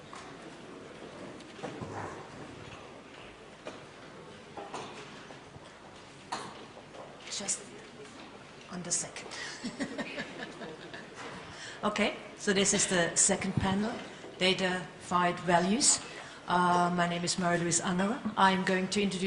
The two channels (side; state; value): both; identical; correlation 1.00